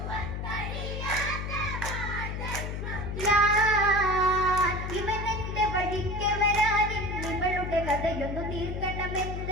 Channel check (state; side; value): noise; left; hum, 4 dB below the sound